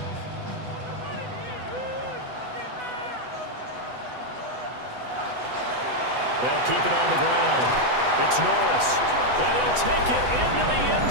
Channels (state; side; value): late; left; 8.0 ms